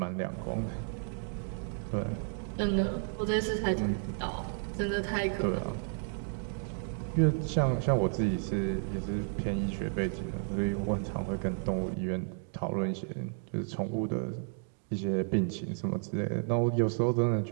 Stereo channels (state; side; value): silent; left; 56 dB below the other